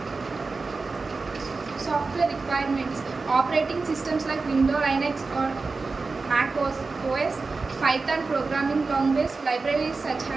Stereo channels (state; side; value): quieter; left; 4.1 dB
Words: Software requirements: operating systems like Windows, Linux, or Mac OS, Python programming language, libraries such